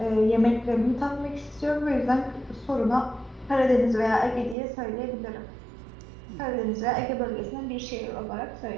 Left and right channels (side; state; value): left; drops out; at 4.5 s